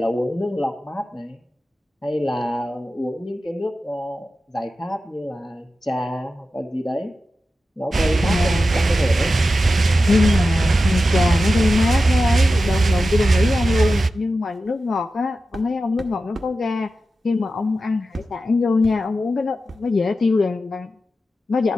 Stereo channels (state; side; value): normal; both; correlation 0.92